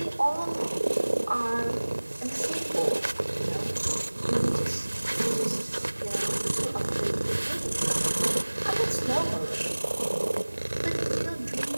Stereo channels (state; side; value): inverted; both; correlation -1.00